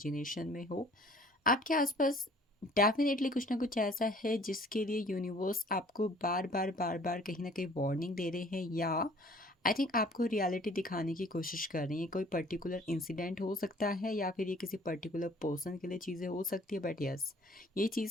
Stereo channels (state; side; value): normal; both; correlation 0.53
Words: में हो। आपके आसपास डेफिनेटली कुछ ना कुछ ऐसा है जिसके लिए यूनिवर्स आपको बार बार कहीं ना कहीं वार्निंग दे रहे हैं या आई थिंक आपको रियलिटी दिखाने की कोशिश कर रही हैं। कोई पर्टिकुलर इंसिडेंट हो सकता है या फिर ये किसी पर्टिकुलर पर्सन के लिए चीज़ें हो सकती है, बट यस ये